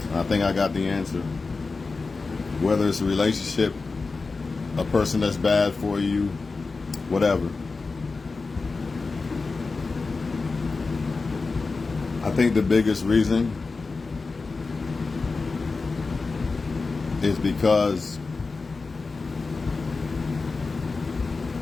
I think I got the answer. Whether it's a relationship, a person that's bad for you, whatever. I think the biggest reason is because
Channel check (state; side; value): quieter; right; 4.1 dB